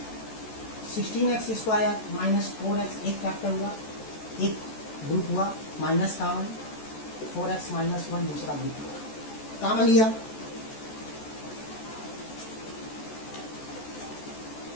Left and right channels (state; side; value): late; right; 14 ms